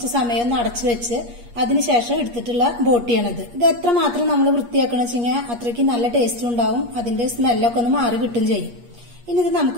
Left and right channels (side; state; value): left; late; 8.4 ms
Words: സമയം ഒന്ന് അടച്ചു വെച്ച് അതിനുശേഷം എടുത്തിട്ടുള്ള ബോട്ടിയാണിത്. ഇത് എത്രമാത്രം നമ്മൾ വൃത്തിയാക്കണം വെച്ചാൽ അത്രയ്ക്ക് നല്ല ടേസ്റ്റ് ഉണ്ടാവും. അതിന്റെ സ്മെല്ലൊക്കെ ഒന്ന് മാറി കിട്ടും ചെയ്യും. ഇനി ഇത്